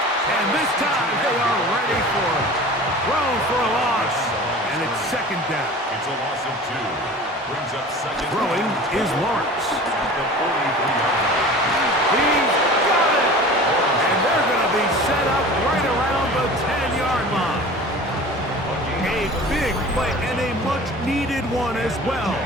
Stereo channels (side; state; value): both; normal; correlation 0.39